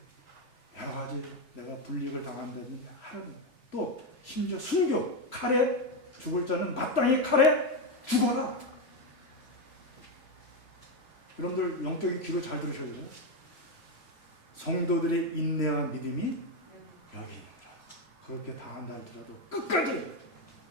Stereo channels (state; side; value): late; right; 3.0 ms